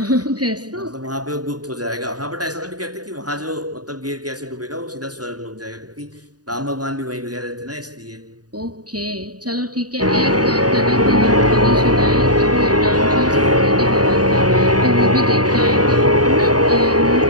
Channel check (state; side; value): late; left; 0.68 ms